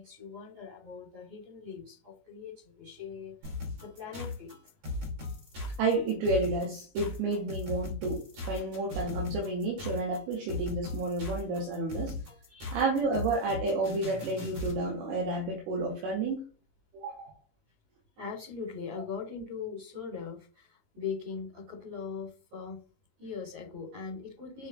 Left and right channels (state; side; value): late; left; 19 ms